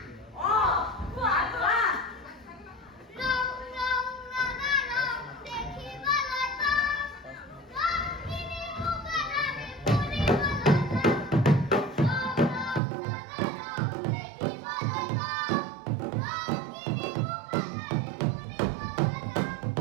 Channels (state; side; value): drops out; left; at 12.8 s